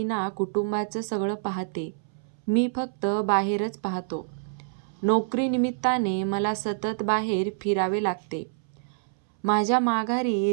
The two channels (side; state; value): left; silent; 60 dB below the other